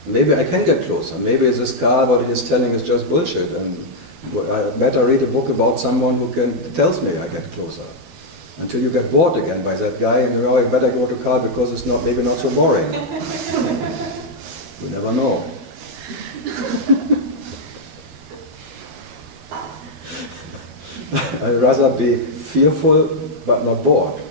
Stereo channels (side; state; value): left; late; 12 ms